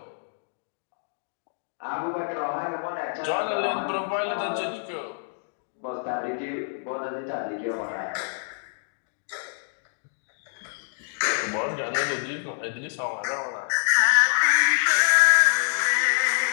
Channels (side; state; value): right; silent; digital silence